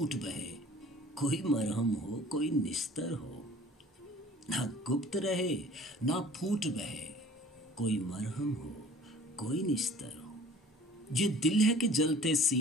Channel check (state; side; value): normal; both; correlation 0.49